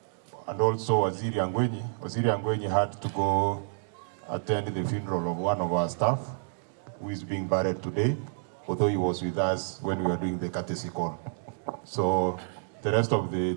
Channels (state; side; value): silent; left; digital silence